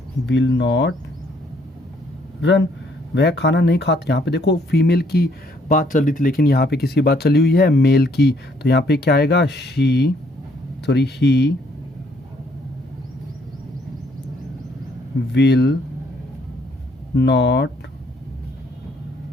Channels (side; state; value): both; normal; correlation 0.66